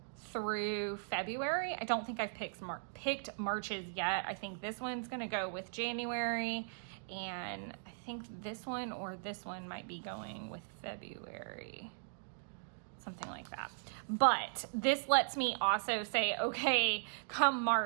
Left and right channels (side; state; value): left; silent; digital silence